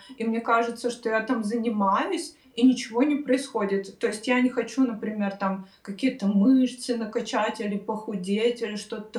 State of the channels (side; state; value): both; identical; correlation 1.00